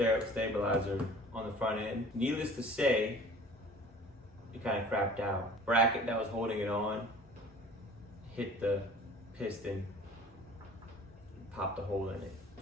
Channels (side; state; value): both; normal; correlation 0.46